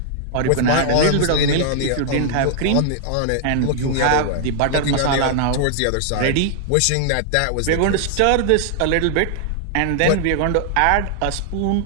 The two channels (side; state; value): both; different; correlation 0.00